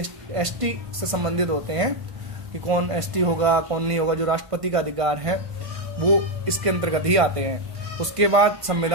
ST से संबंधित होते हैं कि कौन ST होगा कौन नहीं होगा, जो राष्ट्रपति का अधिकार है वो इसके अंतर्गत ही आते हैं। उसके बाद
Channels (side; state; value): left; late; 1.5 ms